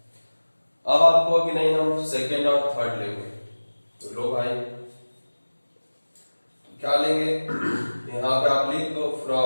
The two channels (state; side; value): inverted; both; correlation -1.00